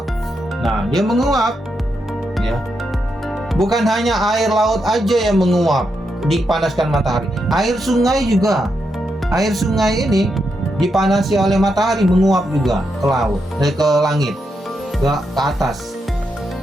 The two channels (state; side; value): normal; both; correlation 0.83